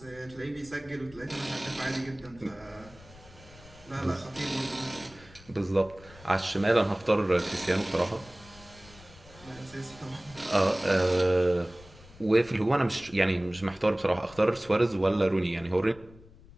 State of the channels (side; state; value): left; noise; rumble, 22 dB below the sound